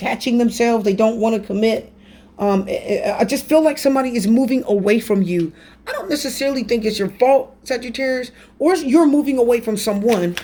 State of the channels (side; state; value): both; identical; correlation 1.00